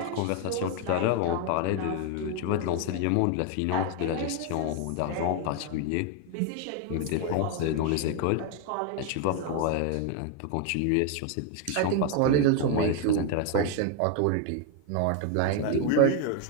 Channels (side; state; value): both; different; correlation 0.01